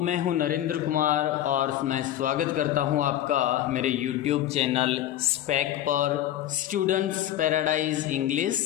हूं नरेंद्र कुमार और मैं स्वागत करता हूं आपका मेरे यूट्यूब चैनल स्पैक पर स्टूडेंट्स पैराडाइज इंग्लिश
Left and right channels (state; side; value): quieter; right; 12.5 dB